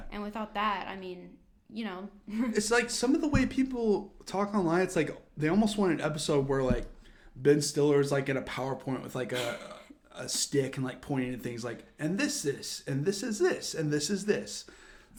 And without that, I mean, you know. It's like some of the way people talk online, it's like they almost want an episode where like Ben Stiller's like in a PowerPoint with like a stick and like pointing at things like, and this, and this is this, and this is this.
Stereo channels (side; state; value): both; identical; correlation 1.00